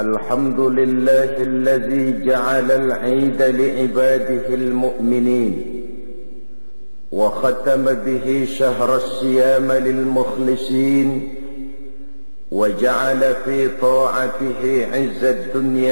Alhamdulillahilladzi ja'ala al-'ida li'ibadihi al-mu'minin wa khatama bihi shahra as-siyama lil-mukhlisin وجعل في طاعته عز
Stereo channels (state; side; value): inverted; both; correlation -1.00